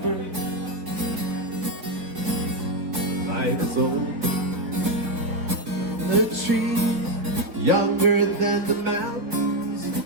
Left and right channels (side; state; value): left; late; 4.5 ms